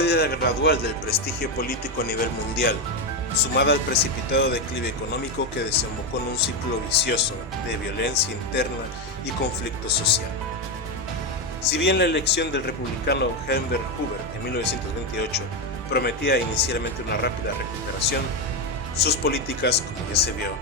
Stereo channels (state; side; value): normal; both; correlation 0.09